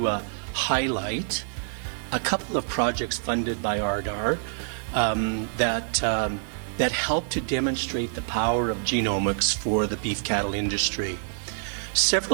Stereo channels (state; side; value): silent; left; digital silence